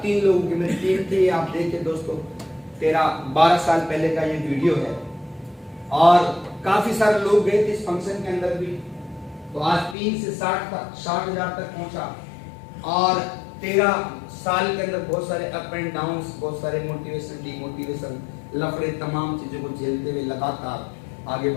3 लोगों की मेरी टीम थी। आप देखिए दोस्तों, 12 साल पहले का ये वीडियो है, और काफी सारे लोग गए थे इस फंक्शन के अंदर भी। तो आज 3 से 60,000 तक पहुंचा। और 13 साल के अंदर बहुत सारे अप एंड डाउन, बहुत सारे मोटिवेशन, डिमोटिवेशन, लफड़े, तमाम चीजों को झेलते हुए लगातार आगे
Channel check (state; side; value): drops out; right; at 10.0 s